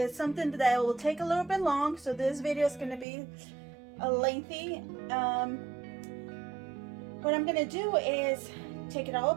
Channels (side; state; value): left; drops out; at 3.1 s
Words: something that will take a little bit long. So this video is going to be lengthy. What I'm going to do is take it all